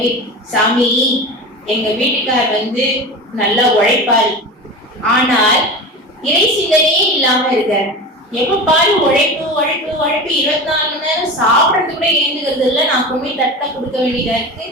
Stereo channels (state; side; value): normal; both; correlation 0.29